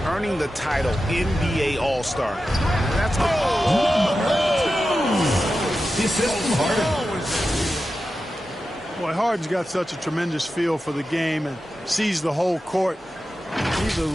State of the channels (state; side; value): normal; both; correlation 0.92